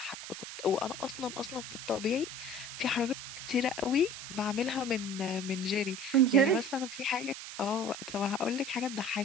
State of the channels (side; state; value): right; noise; hiss, 10 dB below the sound